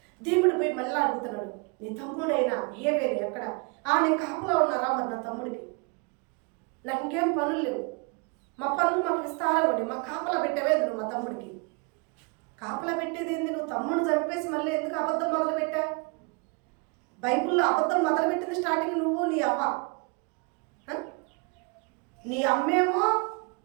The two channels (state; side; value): quieter; left; 32.1 dB